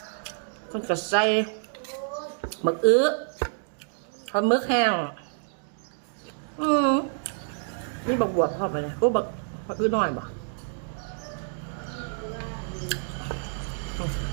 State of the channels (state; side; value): silent; left; digital silence